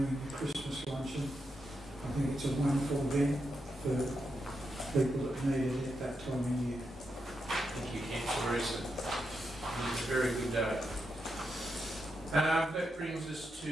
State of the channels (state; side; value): normal; both; correlation 0.85